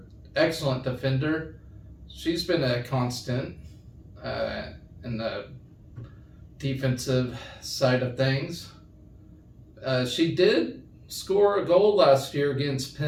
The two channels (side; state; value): both; identical; correlation 1.00